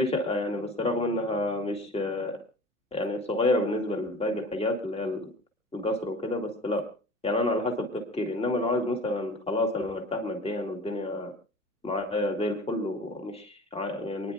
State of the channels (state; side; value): normal; both; correlation 0.41